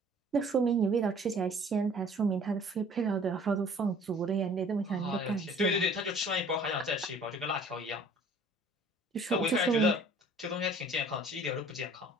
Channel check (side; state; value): both; normal; correlation 0.52